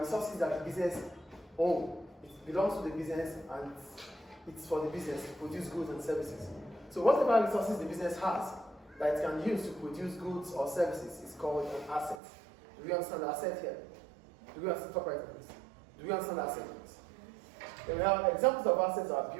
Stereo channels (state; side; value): drops out; left; at 12.2 s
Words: that the business owns. It belongs to the business and it's for the business to produce goods and services. So whatever resources the business has that it can use to produce goods or services is called an asset. Do we understand the asset here? Do we understand Do we understand the asset? Then we have examples of assets are